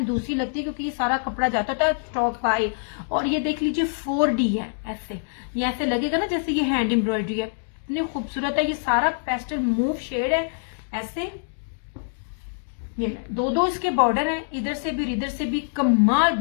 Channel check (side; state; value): right; silent; digital silence